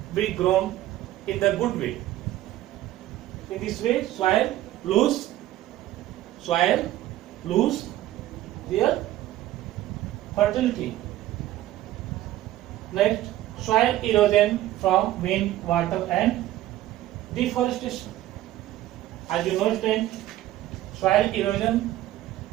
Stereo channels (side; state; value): left; quieter; 14.5 dB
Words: be grown in the good way. In this way, soil lose their fertility. Next, soil erosion from wind, water, and deforestation. As you know, soil erosion